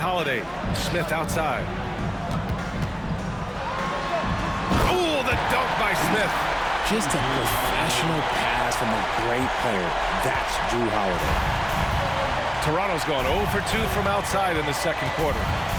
Smith outside. Oh, the dunk by Smith. Just a professional pass from a great player. That's Drew Holiday. Toronto's gone 0 for 2 from outside in the second quarter.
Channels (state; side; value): identical; both; correlation 1.00